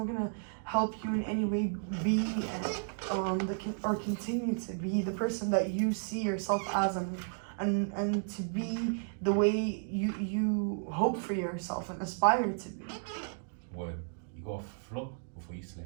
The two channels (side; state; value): left; silent; digital silence